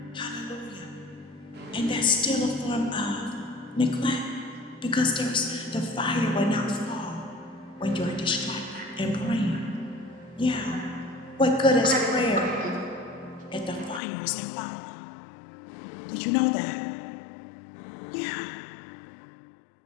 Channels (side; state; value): right; drops out; at 14.0 s